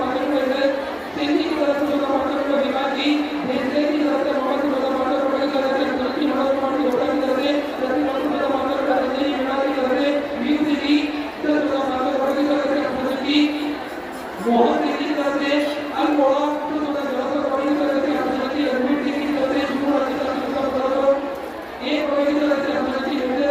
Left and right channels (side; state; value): both; identical; correlation 1.00